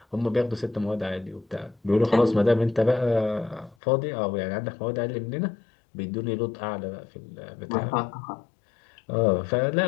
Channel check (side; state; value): right; drops out; at 3.8 s